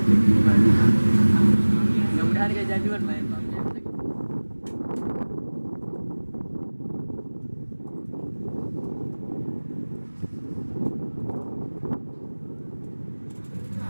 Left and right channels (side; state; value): both; inverted; correlation -1.00